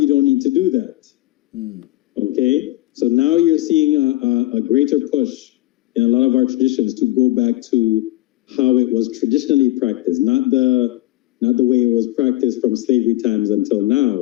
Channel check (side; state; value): right; quieter; 17.0 dB